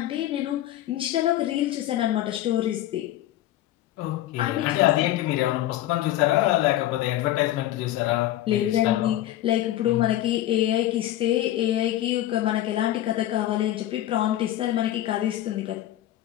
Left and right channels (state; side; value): quieter; right; 13.6 dB